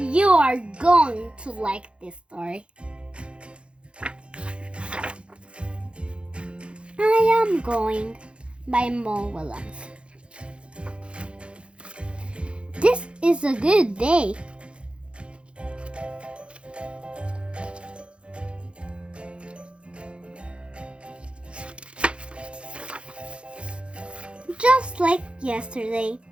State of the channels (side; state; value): left; late; 0.058 ms